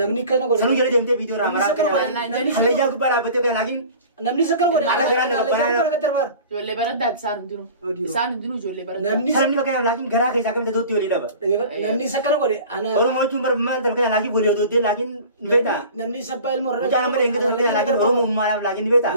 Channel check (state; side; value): inverted; both; correlation -0.42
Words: namni kana godhe sanuu jala deemtee viidiyoo raamaraa hallayyaa gubbaa dhaabbattee fakkaata laakiin namni isa kana godhe Ala biraan nama baraan ijoollee baraddaati isaan hundinuu ijoollee baraddaati namni Salamni fakkaata laakiin garaa keessaa kamitti dootti walii dhaba namni isa kana godhe ana Oromoo jechuun bara maal fakkaata laakiin walii dootti laakiin ni beektaa namni isa baay'ee ilmoo Mucaan amma deengata fakkaata laakiin Oromoo uummaadhaaf laakiin ni beektaa